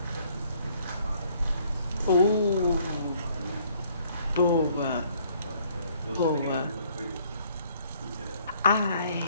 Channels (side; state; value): both; inverted; correlation -0.63